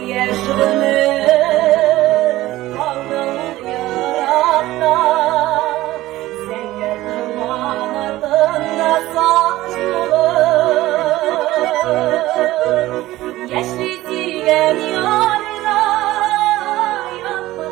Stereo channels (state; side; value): quieter; left; 16.6 dB